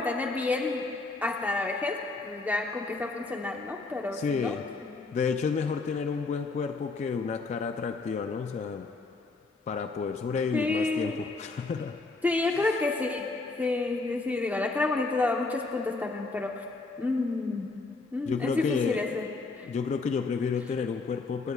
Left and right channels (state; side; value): quieter; right; 3.7 dB